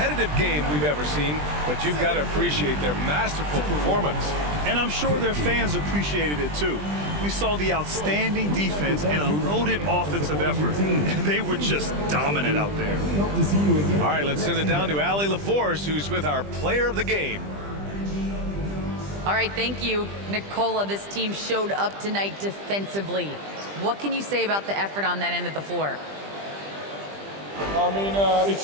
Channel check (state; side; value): late; left; 20 ms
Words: game we've ever seen, but you've got to appreciate their masterful performance. And I'm sure their fans appreciated it too. We saw the outstanding defense and a loaded offensive effort. They were just dominant out there. All right, let's send it down to Allie LaForce, who's with our player of the game. All right, thank you, Nicola. This team showed up tonight defensively. What can you say about the effort on that end of the floor? I mean,